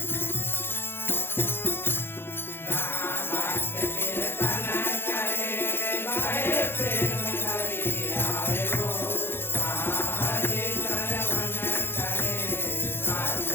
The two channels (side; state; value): right; late; 0.11 ms